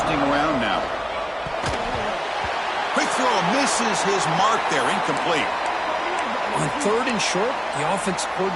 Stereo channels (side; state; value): both; identical; correlation 1.00